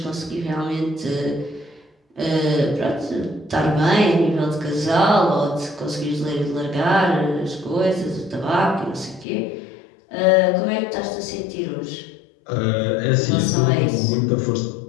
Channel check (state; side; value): drops out; right; at 9.2 s